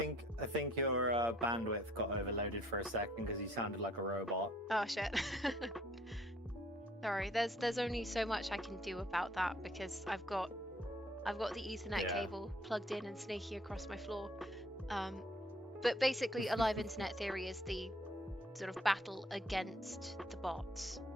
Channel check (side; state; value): both; normal; correlation 0.61